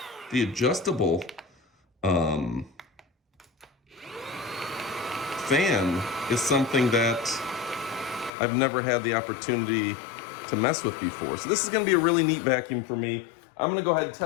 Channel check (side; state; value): right; drops out; at 8.3 s